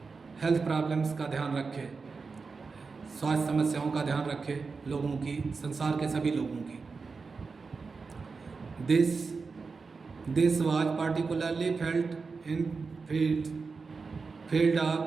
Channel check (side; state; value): left; quieter; 4.6 dB